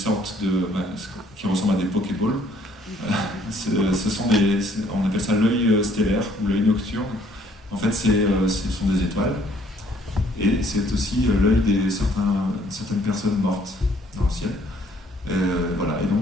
qui ressemblent à des pokéballs. Ce sont on appelle ça l'œil stellaire, ou l'œil nocturne. En fait, ce sont des étoiles, et c'est aussi l'œil de certaines personnes mortes dans le ciel. Voilà, et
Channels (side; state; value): both; normal; correlation 0.63